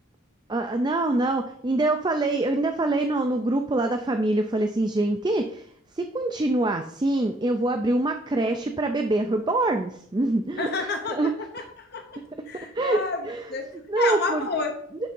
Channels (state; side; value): normal; both; correlation 0.61